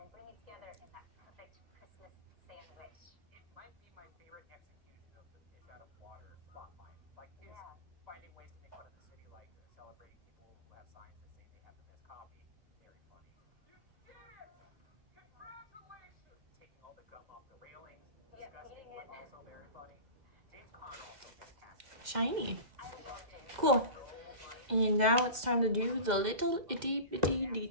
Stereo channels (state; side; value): late; left; 2.1 ms